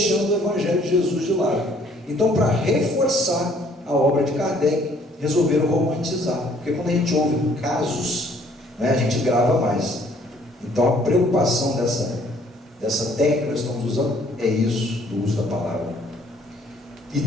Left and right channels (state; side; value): normal; both; correlation 0.61